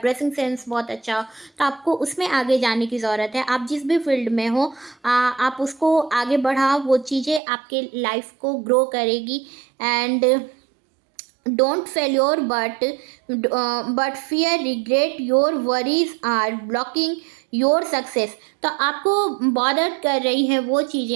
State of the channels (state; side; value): drops out; left; at 7.4 s